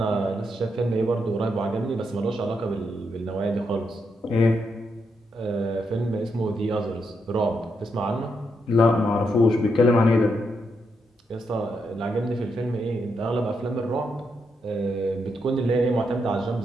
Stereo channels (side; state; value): both; normal; correlation 0.81